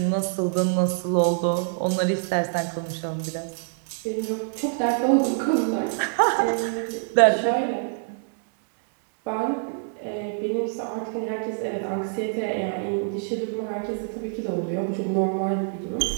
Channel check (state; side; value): silent; left; digital silence